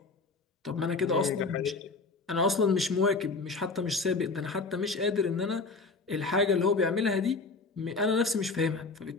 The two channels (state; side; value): quieter; right; 3.9 dB